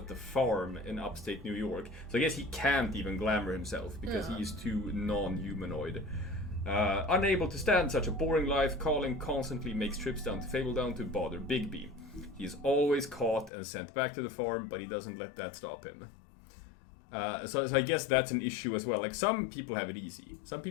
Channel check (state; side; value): drops out; right; at 13.5 s